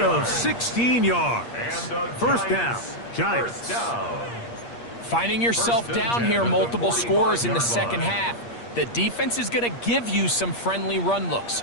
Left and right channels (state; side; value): late; right; 8.5 ms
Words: 16 yards. First down, Giants. First down. Finding yourself down here, multiple scores in the second half. The defense is going to give you some friendly run looks.